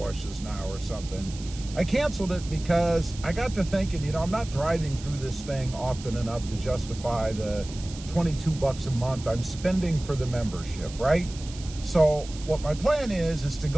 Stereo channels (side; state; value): right; noise; hiss, 16 dB below the sound